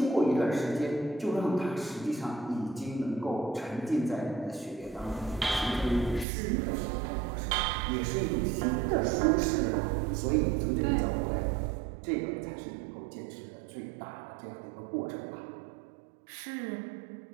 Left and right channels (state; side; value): drops out; left; at 6.2 s